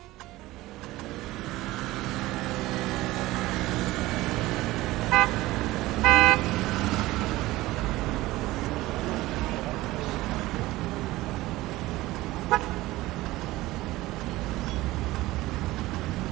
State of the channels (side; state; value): left; quieter; 18.2 dB